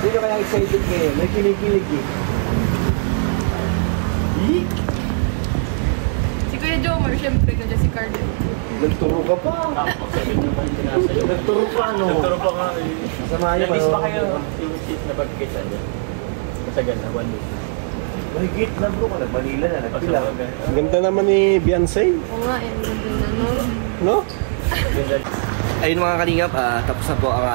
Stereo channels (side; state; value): left; silent; digital silence